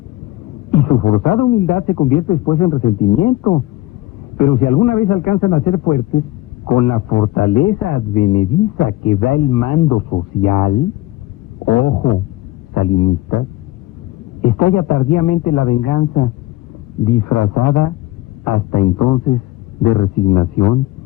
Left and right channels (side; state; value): right; quieter; 17.6 dB